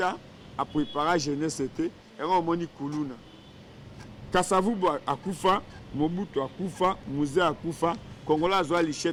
ans à préparer jeunesse c'était et on moni kuluna Kasavubu akufa Mobutu akufa Mouzé akufa Kongola azwa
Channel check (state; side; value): identical; both; correlation 1.00